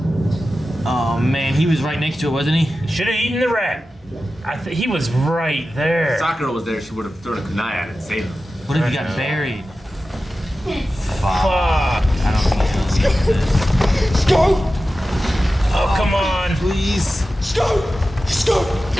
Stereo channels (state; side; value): normal; both; correlation 0.94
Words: Oh man, he was right next to it, wasn't he? Should have eaten the rat. He was right there. Sakura was there, she would have thrown a kunai at it and saved him. What if he got buried? Fuck. Fuck. I don't think he's gonna do this. Go! Oh, come on. Please. Go! Go!